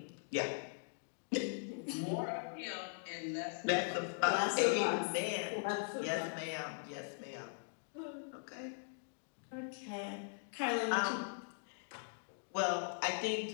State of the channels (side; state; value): right; silent; digital silence